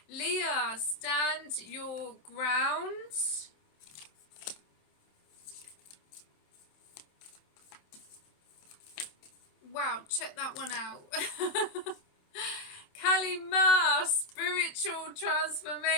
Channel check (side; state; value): right; late; 27 ms